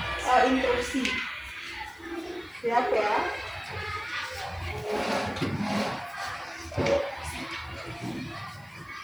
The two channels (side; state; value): left; noise; hiss, 29 dB below the sound